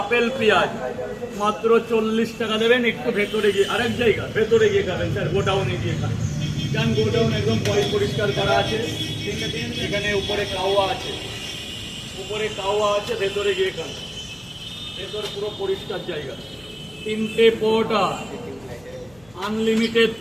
আপেল পেঁয়াজ, মাত্র 40 টাকা দেবেন। একটু ভেতরে গিয়ে আরেক জায়গা ভেতরে গিয়ে খাবেন স্যার, গোডাউনে গিয়ে খাবেন। কারণ গোডাউন একদম পরিষ্কার করা আছে, এখানে উপরে কাওয়া আছে, উপরে কাওয়া আছে, ভেতরে গিয়ে খান, ভেতরে পুরো পরিষ্কার জায়গা। 3টে পরোটা, আনলিমিটেড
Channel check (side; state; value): left; noise; hum, 27 dB below the sound